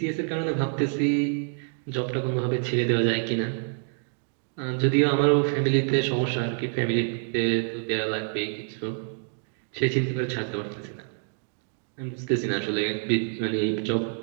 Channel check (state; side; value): silent; left; 56 dB below the other